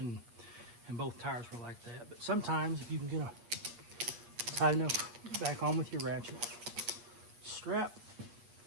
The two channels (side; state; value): left; late; 8.4 ms